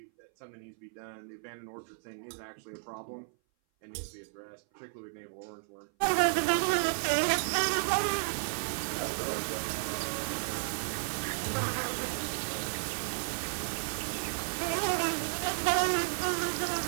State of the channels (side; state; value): left; silent; 56 dB below the other